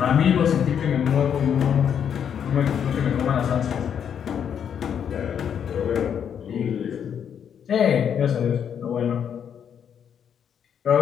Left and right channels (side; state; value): right; quieter; 8.2 dB